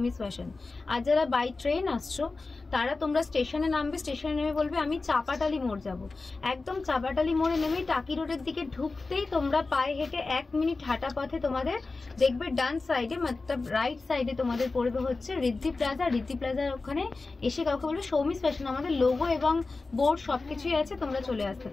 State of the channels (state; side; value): quieter; right; 3.7 dB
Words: ফ্যাশন। আর যারা বাই ট্রেন আসছো তারা তোমরা স্টেশনে নামবে, স্টেশনে নেমে বলবে আমি চাপাটালি মোড় যাব। একদম চাপাটালি মোড়ে নেমে টাকি রোডের দিকে ঢুকতেই তোমরা পায়ে হেঁটে 1 মিনিট হাঁটা পথে তোমাদের দেখবে ডান সাইডে মতলব রাইট সাইডে তোমাদের পড়বে হচ্ছে রিদ্ধি প্লাজা। রিদ্ধি প্লাজার ওখানে এসে কাউকে বলবে সৌমিস ফ্যাশন, আমাদের লোগো এবং বোর্ড সবকিছুই আছে, তোমরা চলে আসতে